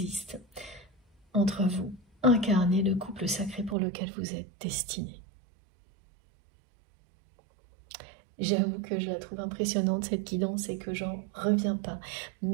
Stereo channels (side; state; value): left; drops out; at 3.8 s